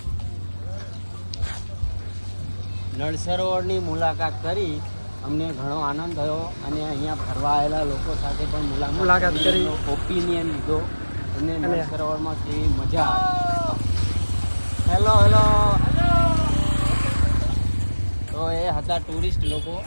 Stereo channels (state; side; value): inverted; both; correlation -1.00